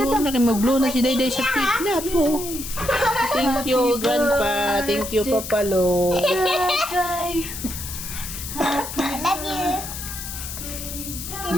na kayo mag-blow na si Dayday sa cake na po. Thank you, Grandpa. Thank you, Papalo. Love you.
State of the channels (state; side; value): noise; left; hiss, 8 dB below the sound